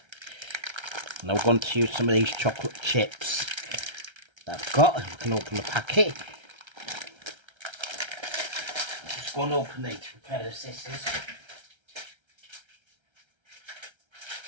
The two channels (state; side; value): late; left; 1.3 ms